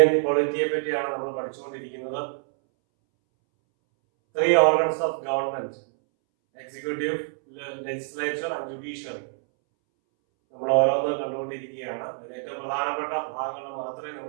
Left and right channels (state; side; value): silent; left; 61 dB below the other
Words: പൊളിറ്റിയെ പറ്റിയാണ് നമ്മൾ പഠിച്ചുകൊണ്ടിരിക്കുന്നത്. 3 organs of government: executive, legislature and judiciary. നമ്മൾ ഓരോന്ന് കണ്ടുകൊണ്ടിരിക്കുകയാണ്. അതിൽ ഏറ്റവും പ്രധാനപ്പെട്ട ഭാഗങ്ങൾ മാത്രമേ